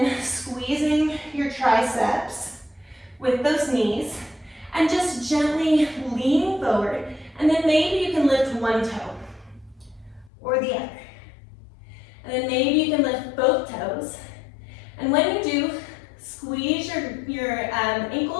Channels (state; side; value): drops out; right; at 10.3 s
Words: squeezing your triceps with those knees, and just gently leaning forward. And then maybe you can lift one toe or the other. And then maybe you can lift both toes. And when you do, squeeze your